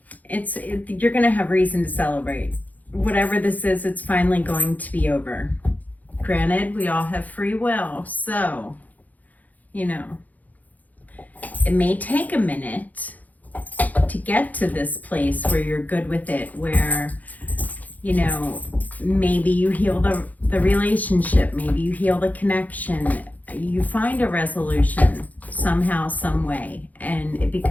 You're going to have reason to celebrate. Whatever this is, it's finally going to be over. Granted, we all have free will, so, you know, it may take a minute to get to this place where you're good with it, where, you know, maybe you heal the relationship, maybe you heal the connection, you find a resolution somehow, some way, and it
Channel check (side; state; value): right; late; 0.079 ms